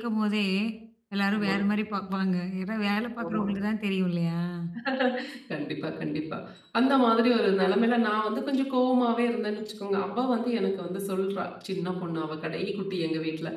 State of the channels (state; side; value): identical; both; correlation 1.00